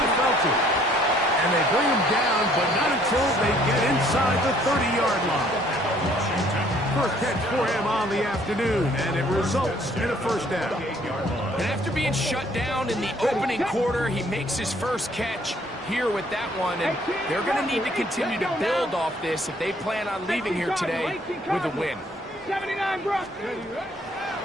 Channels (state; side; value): normal; both; correlation 0.61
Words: Felton. And they bring him down, but not until they get inside the 30-yard line. First catch for him on the afternoon, and it results in a first down. And after being shut down in the opening quarter, he makes his first catch here with that one, and they're going to need to continue to build off this if they plan on leaving here today with a win. 79, Brock.